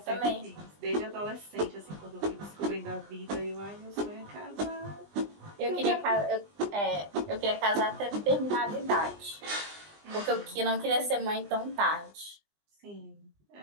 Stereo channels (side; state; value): left; late; 20 ms